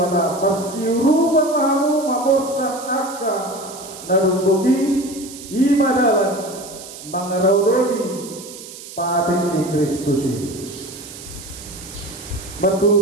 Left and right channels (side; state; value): right; noise; hiss, 14 dB below the sound